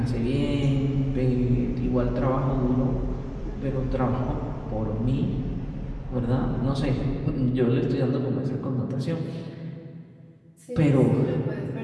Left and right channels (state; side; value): identical; both; correlation 1.00